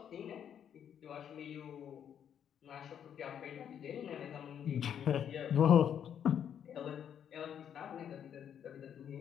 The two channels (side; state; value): right; quieter; 8.9 dB